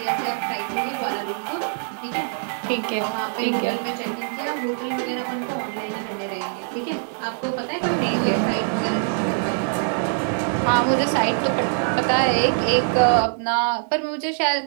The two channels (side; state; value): left; silent; digital silence